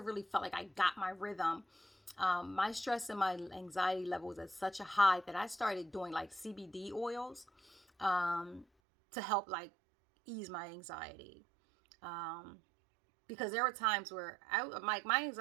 felt like I got my rhythm. My stress and my anxiety level was at such a high that I started doing like CBD oils to help like ease my anxiety. Because there were times where my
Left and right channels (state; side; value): drops out; left; at 8.7 s